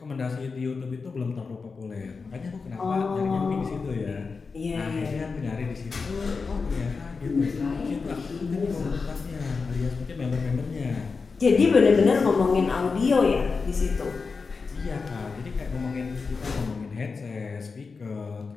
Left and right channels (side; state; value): right; quieter; 4.7 dB